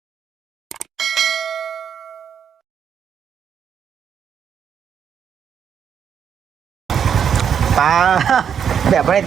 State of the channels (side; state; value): left; quieter; 7.9 dB